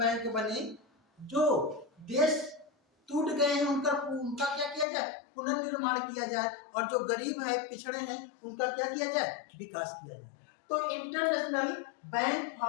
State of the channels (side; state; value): right; drops out; at 4.9 s